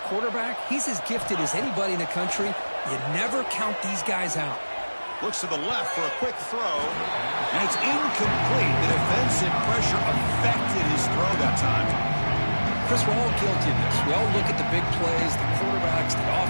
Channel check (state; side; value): inverted; both; correlation -1.00